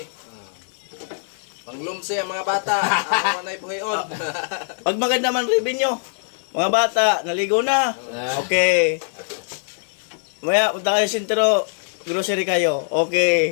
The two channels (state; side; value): silent; right; digital silence